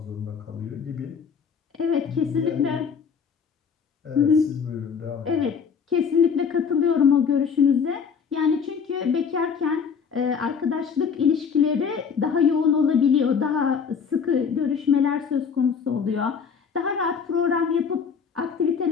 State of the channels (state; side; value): quieter; right; 6.4 dB